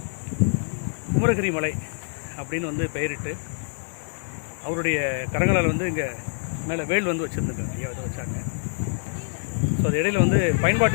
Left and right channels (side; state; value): right; silent; digital silence